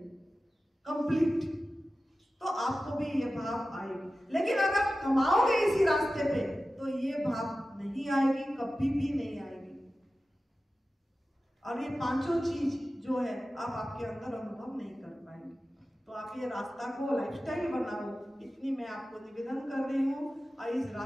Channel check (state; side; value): normal; both; correlation 0.94